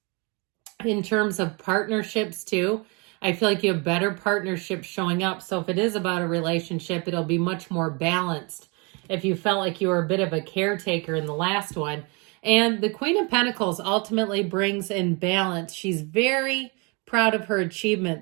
In terms of partnerships too, I feel like you have better partnerships showing up. So if it is about a relationship, it'll be much more balanced. If you felt like you were a bit of a caretaker in the last one. And the Queen of Pentacles ultimately brings in balance. She's very proud of her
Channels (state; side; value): quieter; left; 30.8 dB